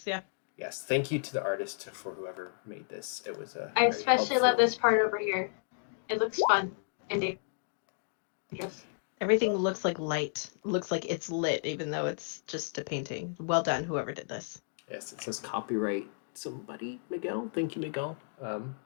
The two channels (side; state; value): right; silent; digital silence